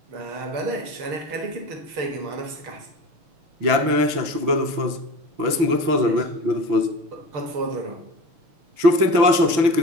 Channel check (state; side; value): late; left; 6.0 ms